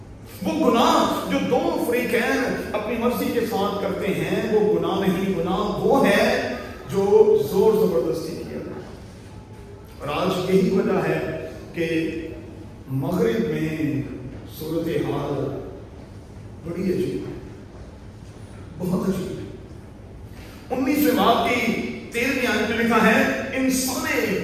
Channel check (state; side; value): identical; both; correlation 1.00